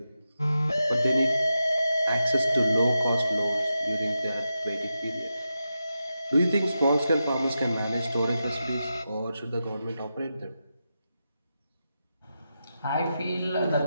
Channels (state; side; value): inverted; both; correlation -0.89